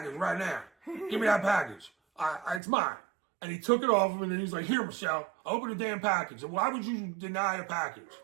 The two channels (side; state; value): left; drops out; at 2.6 s